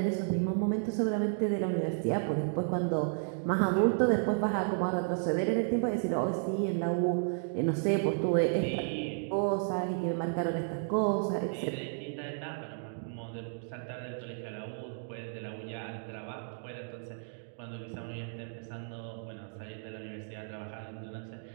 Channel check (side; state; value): left; silent; digital silence